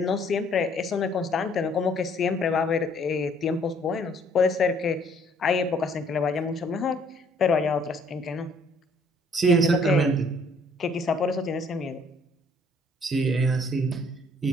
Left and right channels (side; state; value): both; normal; correlation 0.62